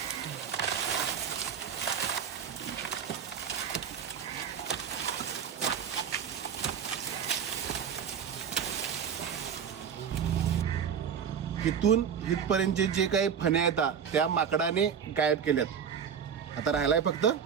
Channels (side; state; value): left; quieter; 7.5 dB